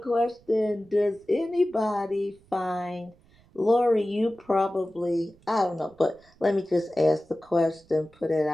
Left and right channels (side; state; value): right; noise; rumble, 30 dB below the sound